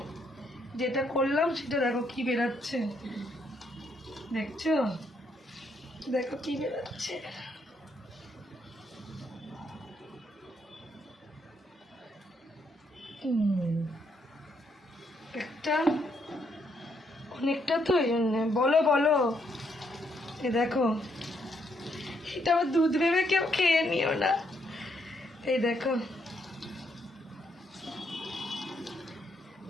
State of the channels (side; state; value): both; normal; correlation 0.74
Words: যেটা করলাম সেটা দেখো কি বেরাচ্ছে, দেখছো? দেখো কি বেরাচ্ছে। একটা অনেকটা তো এই জন্যে। বলো বলো। এ দেখো, এটা আবার দুধ ভেবে কেউ খেয়ে নিও না। এই দেখো,